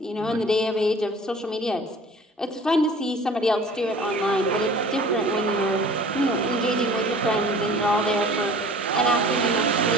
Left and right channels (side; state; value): both; normal; correlation 0.46